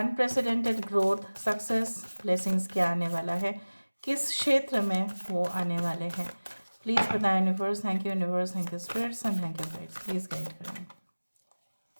growth, success, blessings क्या आने वाला है, किस क्षेत्र में वो आने वाले हैं. प्लीज़ बताएं universe. Thank you universe, thank you spirits and thank you guides. Please guide करें.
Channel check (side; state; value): both; inverted; correlation -1.00